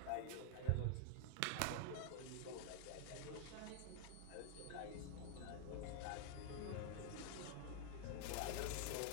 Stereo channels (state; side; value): different; both; correlation 0.00